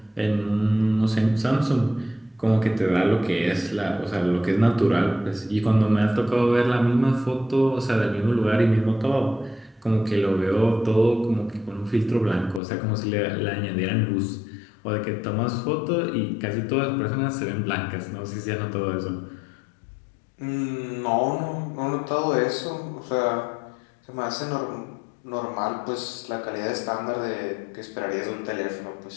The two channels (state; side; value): drops out; right; at 12.6 s